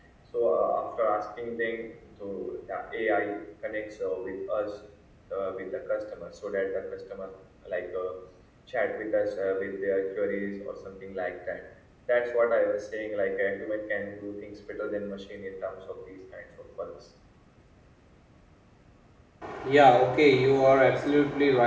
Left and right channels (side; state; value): both; identical; correlation 1.00